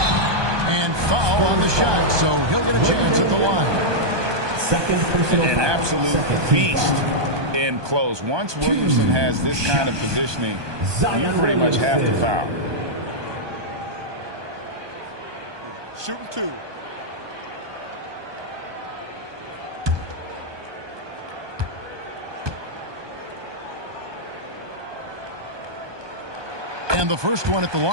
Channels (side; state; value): left; late; 1.2 ms